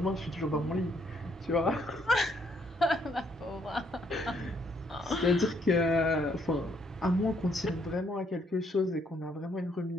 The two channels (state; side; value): normal; both; correlation 0.70